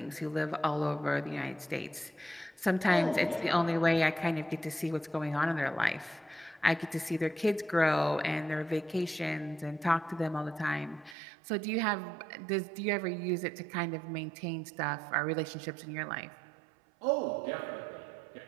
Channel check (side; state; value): left; drops out; at 11.2 s